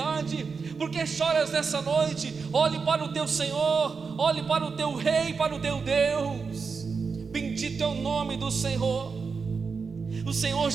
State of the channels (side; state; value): left; quieter; 5.1 dB